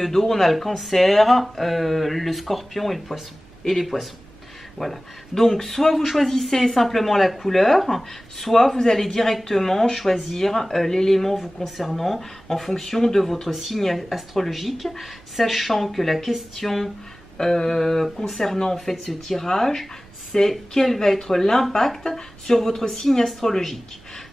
d'eau, on a le Cancer, le Scorpion et le Poisson, et les Poissons. Voilà, donc soit vous choisissez simplement la couleur, soit vous allez directement choisir l'élément vous concernant en fonction de votre signe astrologique, sachant que la question concernant en fait ce tirage, c'est quel va être l'impact sur votre signe astrologique.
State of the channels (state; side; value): noise; right; rumble, 25 dB below the sound